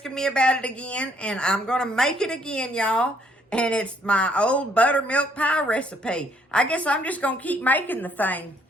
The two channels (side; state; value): both; normal; correlation 0.67